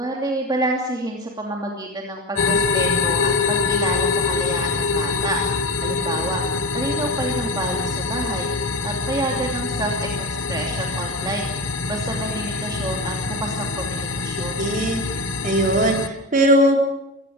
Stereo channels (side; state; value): both; normal; correlation 0.23